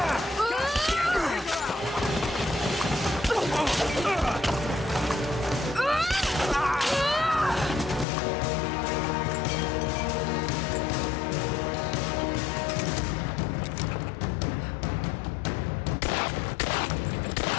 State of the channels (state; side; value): drops out; right; at 8.1 s